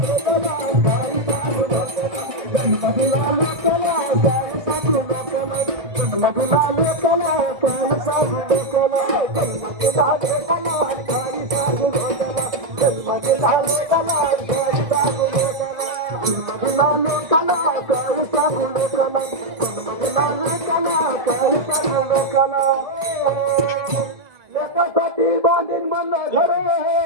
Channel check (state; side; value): late; left; 1.6 ms